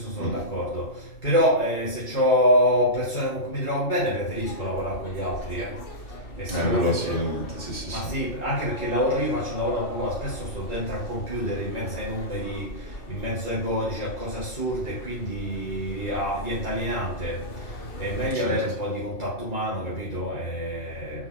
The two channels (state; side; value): late; right; 2.6 ms